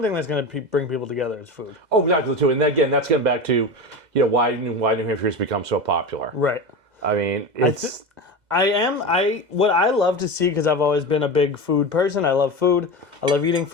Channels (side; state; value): left; late; 2.0 ms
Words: that's going to bring people together, it's food. Oh, exactly, too. And again, that's getting back to, why New Hampshire has become so popular. Right. I mean, it's... What I love to see, because I've always been a big food person. I love food. I love eating